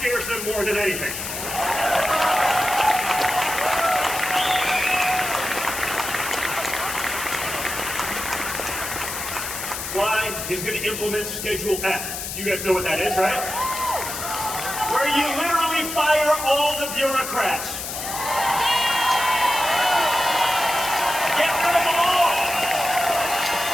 them more than anything. Why? He's going to implement Schedule F. You guys know what that is, right? Where you literally fire all the bureaucrats. Get rid of them all.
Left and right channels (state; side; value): noise; left; hiss, 6 dB below the sound